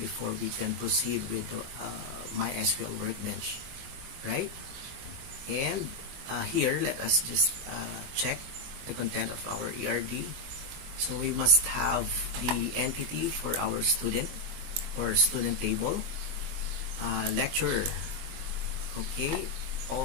we can proceed with the MySQL Workbench, right? And here, let us just check the content of our ERD. So we must have the entity for our student or student table, lecturer, okay,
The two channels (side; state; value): left; late; 22 ms